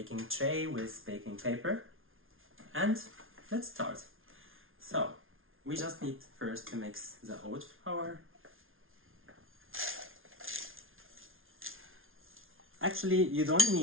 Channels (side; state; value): left; late; 0.60 ms